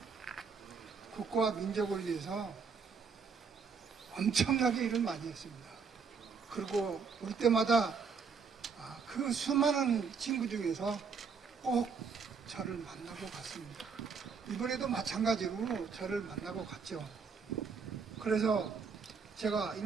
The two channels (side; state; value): left; quieter; 5.5 dB